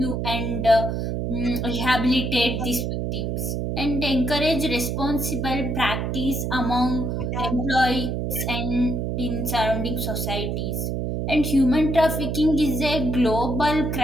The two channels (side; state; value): right; noise; hum, 1 dB below the sound